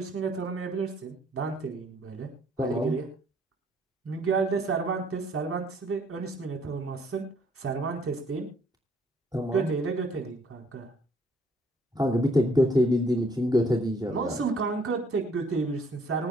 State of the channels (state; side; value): normal; both; correlation 0.63